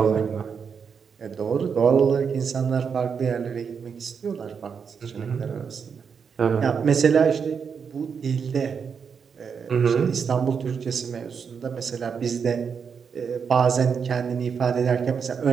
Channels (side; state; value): left; quieter; 6.4 dB